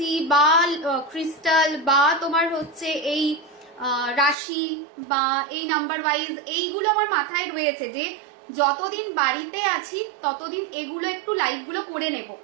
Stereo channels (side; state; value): left; drops out; at 4.4 s